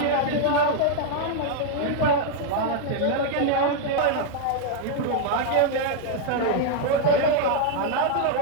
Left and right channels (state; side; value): different; both; correlation 0.00